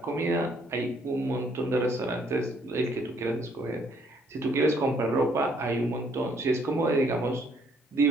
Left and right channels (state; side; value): normal; both; correlation 0.66